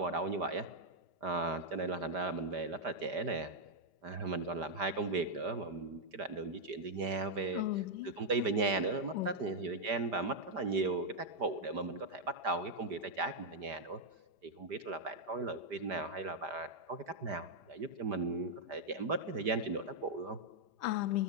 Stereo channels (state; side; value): late; left; 5.1 ms